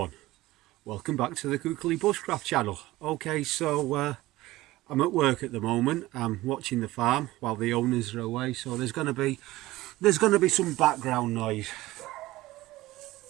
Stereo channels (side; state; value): left; quieter; 17.9 dB